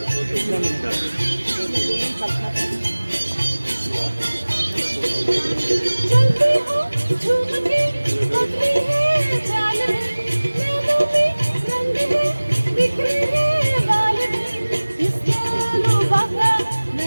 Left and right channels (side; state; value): both; inverted; correlation -1.00